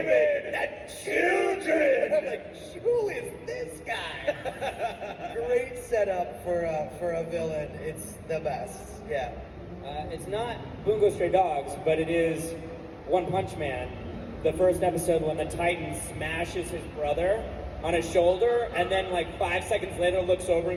and children. I'm like, who is this guy? Great setup for a villain. It's the best. Yeah. It's not Bungo Stray Dogs, but it is One Punch Man. The first episode when the Titan smashes his brother on his shoulder, and then like 5 seconds later looks over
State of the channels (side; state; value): both; identical; correlation 1.00